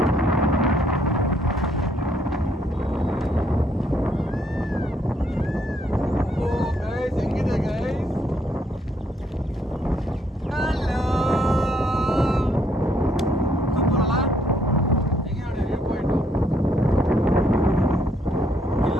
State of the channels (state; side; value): normal; both; correlation 0.70